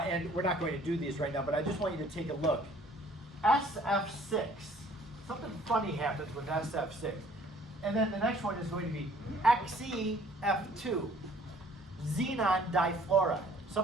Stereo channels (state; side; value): normal; both; correlation 0.57